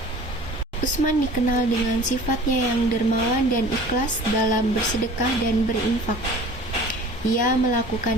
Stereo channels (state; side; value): normal; both; correlation 0.44